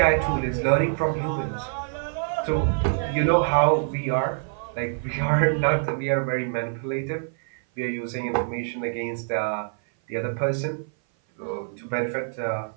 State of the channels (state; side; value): silent; left; 57 dB below the other